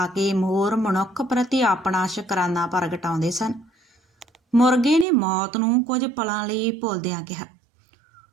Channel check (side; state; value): left; drops out; at 5.1 s